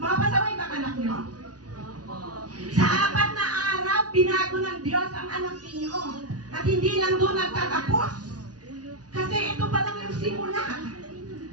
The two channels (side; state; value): left; late; 0.68 ms